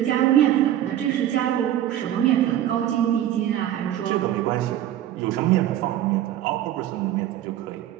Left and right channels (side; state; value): left; quieter; 12.0 dB